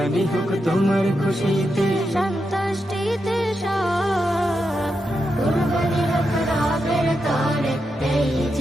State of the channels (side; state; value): both; normal; correlation 0.86